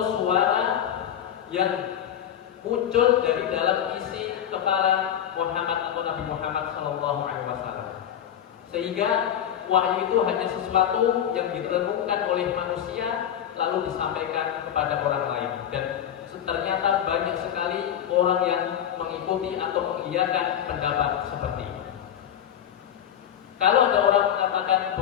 suara yang muncul dari dalam isi kepala Muhammad atau Nabi Muhammad SAW. Sehingga wahyu itu hanya sesuatu yang direnungkan oleh manusia lalu disampaikan kepada orang lain. Dan ternyata banyak sekali orang yang mengikuti atau mengiyakan pendapat seperti ini. Kalau ada orang mengatakan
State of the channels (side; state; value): right; quieter; 9.9 dB